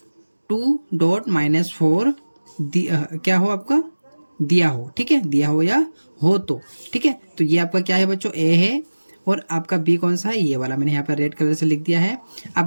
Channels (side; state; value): both; inverted; correlation -1.00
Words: 2.-4 क्या हो आपका दिया हो, ठीक है, दिया हो या हो तो, ठीक है। तो ये आपका क्या है बच्चों, ए है और आपका बी कौन सा है, ये वाला मैंने यहाँ पर रेड कलर से लिख दिया है। अब